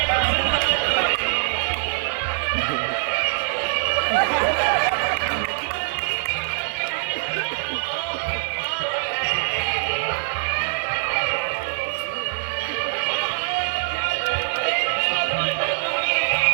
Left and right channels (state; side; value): silent; left; 63 dB below the other